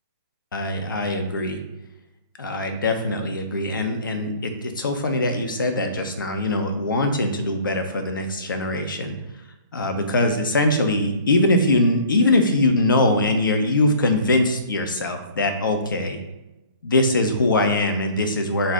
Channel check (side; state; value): both; inverted; correlation -0.50